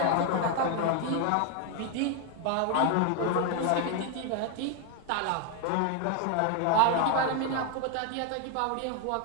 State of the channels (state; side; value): different; both; correlation 0.01